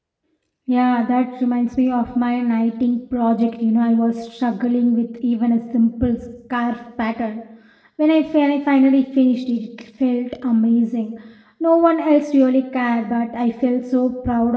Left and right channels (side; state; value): both; identical; correlation 1.00